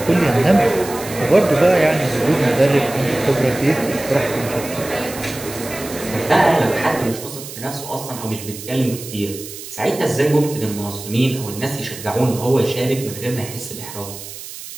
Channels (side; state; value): right; noise; hiss, 12 dB below the sound